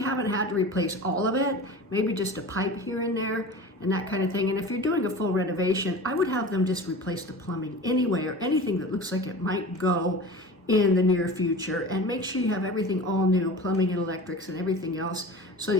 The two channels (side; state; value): both; normal; correlation 0.35